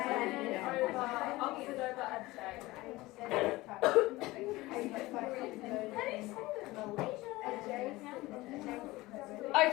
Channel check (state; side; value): quieter; right; 19.6 dB